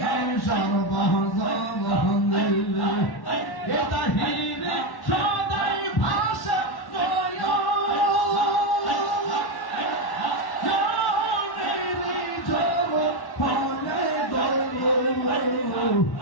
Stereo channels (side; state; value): right; late; 1.1 ms